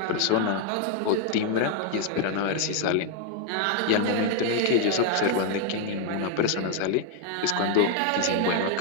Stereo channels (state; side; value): different; both; correlation 0.00